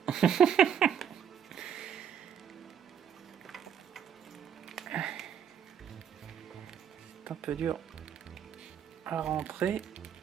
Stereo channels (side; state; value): left; quieter; 8.6 dB